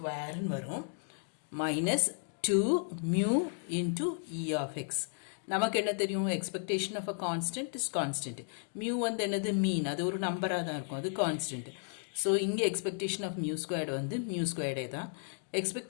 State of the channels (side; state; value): right; silent; 55 dB below the other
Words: வரும் minus 2 mu into E of X. நமக்கு என்ன தெரியும், expectation of a constant is constant. Mu வந்து என்னது, மீன். அது ஒரு நம்பராக தான் இருக்கும், அது கான்ஸ்டன்ட். ஸோ இங்கே எக்ஸ்பெக்டேஷன் ஆஃப் மியூ ஸ்கொயர்டு வந்து மியூ ஸ்கொயர்டே தான்.